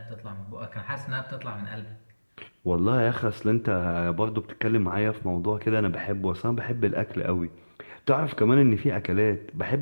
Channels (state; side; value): inverted; both; correlation -1.00